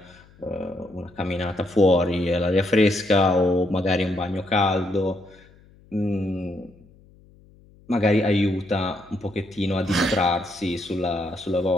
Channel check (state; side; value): noise; left; hum, 27 dB below the sound